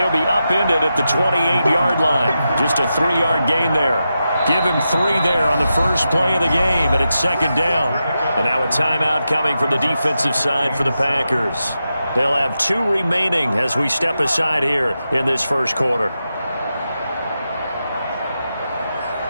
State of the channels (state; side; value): inverted; both; correlation -0.89